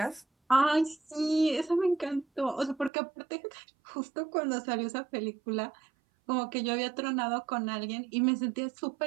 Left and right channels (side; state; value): left; drops out; at 2.9 s